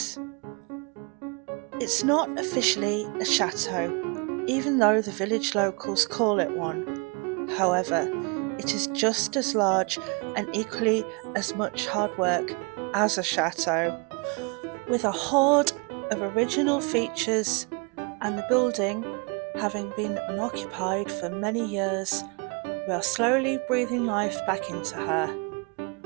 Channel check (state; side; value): quieter; left; 32.1 dB